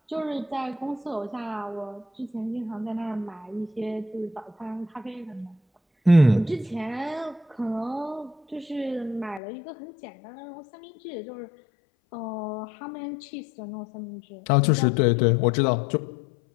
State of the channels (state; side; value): drops out; right; at 9.4 s